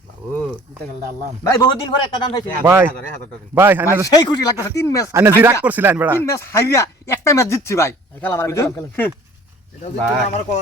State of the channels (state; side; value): normal; both; correlation 0.50